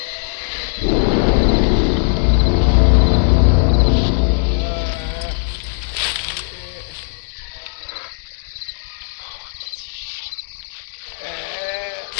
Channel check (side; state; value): right; silent; digital silence